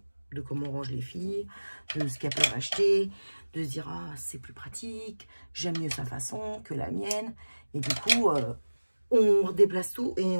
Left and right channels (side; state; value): both; inverted; correlation -1.00